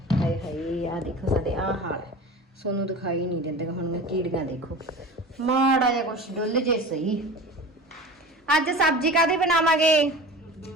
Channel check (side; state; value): both; normal; correlation 0.35